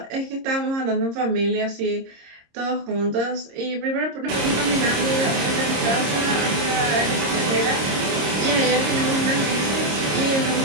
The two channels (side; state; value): left; late; 26 ms